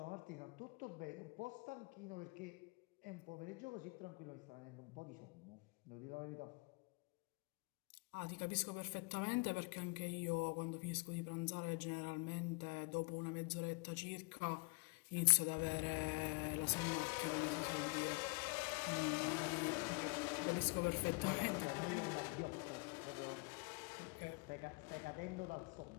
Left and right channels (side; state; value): right; quieter; 29.7 dB